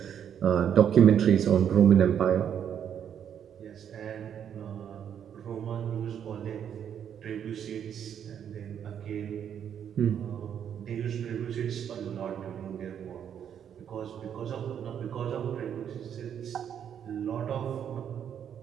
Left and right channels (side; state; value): left; quieter; 8.8 dB